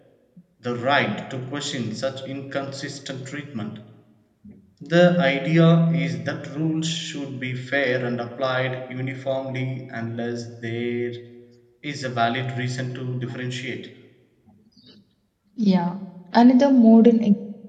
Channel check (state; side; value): identical; both; correlation 1.00